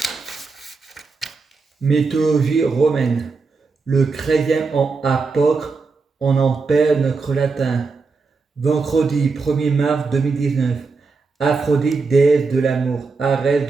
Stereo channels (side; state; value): left; quieter; 4.4 dB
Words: Mythologie romaine. Le chrétien en apôtre, on en perd notre latin. Vendredi 1er mars 2019. Aphrodite, déesse de l'amour.